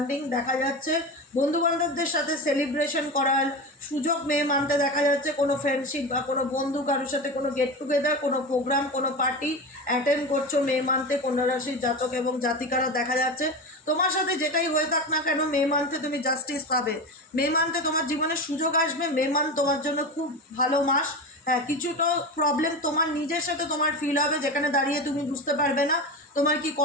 দেখা যাচ্ছে। বন্ধুবান্ধবদের সাথে সেলিব্রেশন করার সুযোগ মে মান্থে দেখা যাচ্ছে। কোনো ফ্রেন্ডশিপ বা কোনো বন্ধু কারোর সাথে কোনো গেট টুগেদার, কোনো প্রোগ্রাম, কোনো পার্টি অ্যাটেন্ড করছো মে মান্থে কন্যা রাশির জাতক এবং জাতিকারা দেখা যাচ্ছে। তোমার সাথে যেটাই হয়ে থাক না কেন মে মান্থে তুমি জাস্টিস পাবে। মে মান্থে তোমার জীবনে সুযোগ আসবে। মে মান্থ তোমার জন্য খুব ভালো মাস। হ্যাঁ, কিছুটা প্রবলেম তোমার নিজের সাথে তোমার ফিল হবে যেখানে দাঁড়িয়ে তুমি বুঝতে পারবে না তোমার কি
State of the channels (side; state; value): both; normal; correlation 0.24